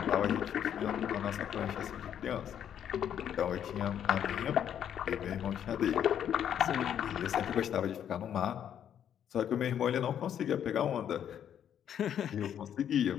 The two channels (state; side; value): quieter; right; 9.5 dB